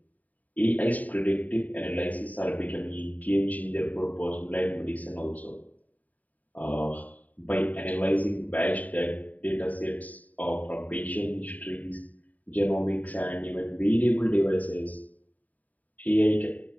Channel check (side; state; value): right; late; 0.074 ms